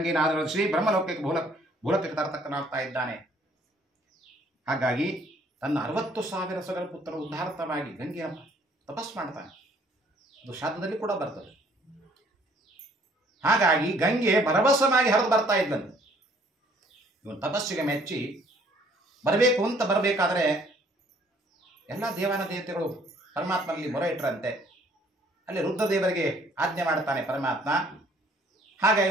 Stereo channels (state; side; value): normal; both; correlation 0.61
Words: ಆಧರಿಸಿ ಬ್ರಹ್ಮಲೋಕಕ್ಕೆ ಭೂಲೋಕಕ್ಕೆ ತರತಕ್ಕನಾಗ್ತಾ ಇದ್ದಾನೆ. ಹಾಗಾಗಿ ತನ್ನ 60,000 ಸುಗರಪುತ್ರ ಉದ್ಧಾರತವಾಗಿ ಗಂಗೆಯ ತಪಸ್ ಮಾಡ್ತಾನೆ. ಅದು ಶಾಸ್ತ್ರದಲ್ಲಿ ಕೂಡ ಬರ್ತದೆ. ಹಾಗಾಗಿ ಗಂಗೆ ಭರವಸವಾಗಿ ಹರಿದು ಬರ್ತಾ ಇದ್ದಂತೆ. ಇವನು ತಪಸ್ಸಿಗೆ ಮೆಚ್ಚಿ ಬರಬೇಕು ಅಂತ ಬರಬೇಕಾದ್ರೆ ಎಲ್ಲ ದೇವಾನ ದೇವತೆಗಳು ಪರಮಾತ್ಮನಲ್ಲಿ ಮೊರೆ ಇಟ್ಟರಂತೆ. ಅಲ್ಲಿ ರುದ್ರದೇವರಿಗೆ ಆಜ್ಞೆ ಮಾಡ್ತಾನೆ ಪರಮಾತ್ಮ.